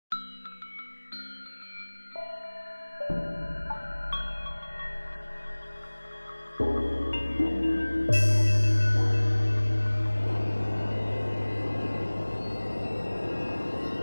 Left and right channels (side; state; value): both; inverted; correlation -1.00